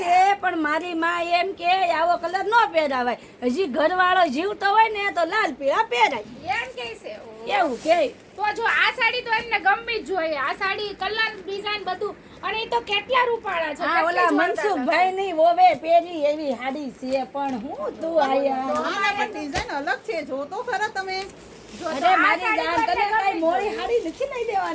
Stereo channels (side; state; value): both; identical; correlation 1.00